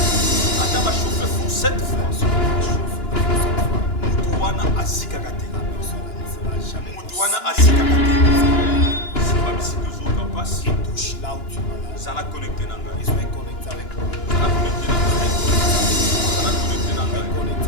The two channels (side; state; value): right; late; 2.9 ms